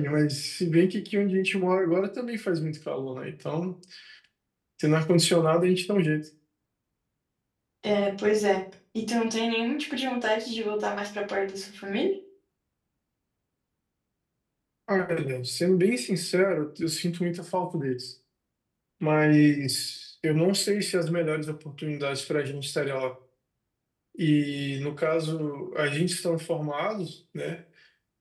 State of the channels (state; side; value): identical; both; correlation 1.00